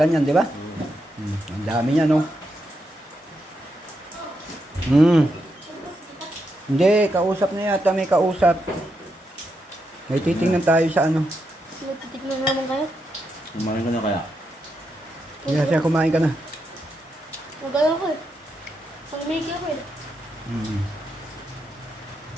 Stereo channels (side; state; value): both; normal; correlation 0.83